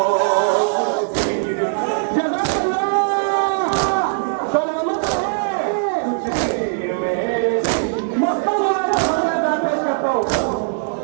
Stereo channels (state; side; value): silent; left; digital silence